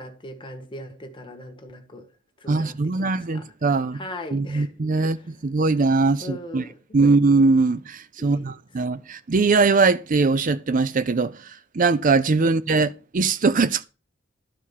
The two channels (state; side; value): quieter; left; 3.4 dB